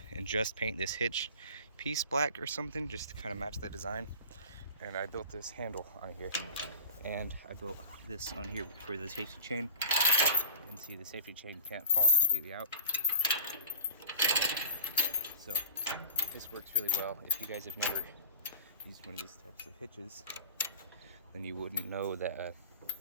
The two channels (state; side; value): inverted; both; correlation -0.36